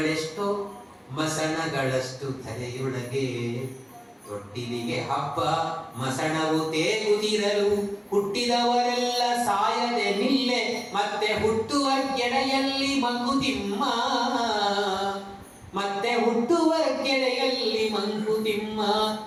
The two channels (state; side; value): identical; both; correlation 1.00